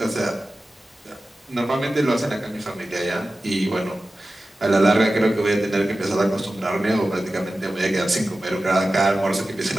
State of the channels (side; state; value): both; normal; correlation 0.95